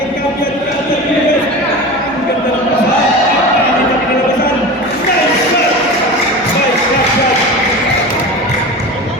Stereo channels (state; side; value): normal; both; correlation 0.30